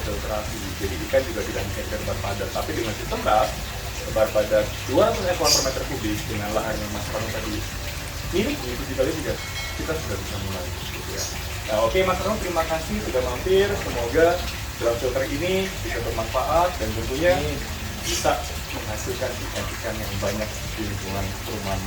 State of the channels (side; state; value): both; identical; correlation 1.00